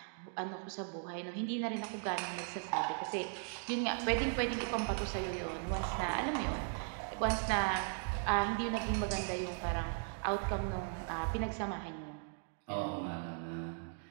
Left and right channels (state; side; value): silent; left; 53 dB below the other